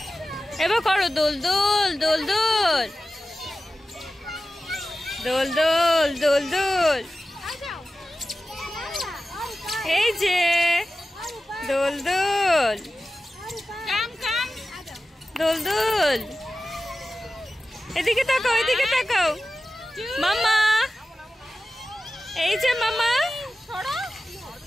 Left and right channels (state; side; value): normal; both; correlation 0.95